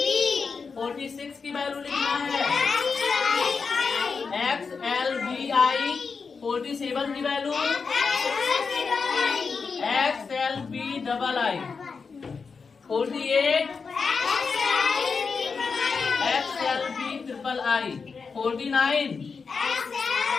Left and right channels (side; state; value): right; quieter; 5.1 dB